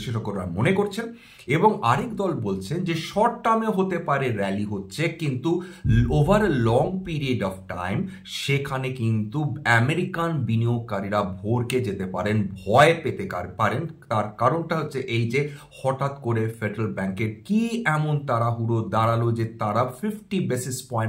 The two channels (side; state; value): both; identical; correlation 1.00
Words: মনে করছেন। এবং আরেক দল বলছেন যে শর্ট টার্মে হতে পারে র্যালি হচ্ছে, কিন্তু over a long period of time সেখানে কিন্তু আমেরিকান বিনিয়োগকারীরা ভরকে যেতে পারেন, ভয় পেতে পারেন। তার কারণটা হচ্ছে এই যে হঠাৎ করে ফেডারেল ব্যাংকের কি এমন তাড়াহুড়ো দাঁড়ালো যে তারা 50 বেসিস